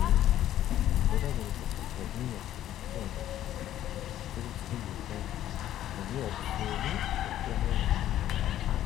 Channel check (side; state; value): right; quieter; 12.3 dB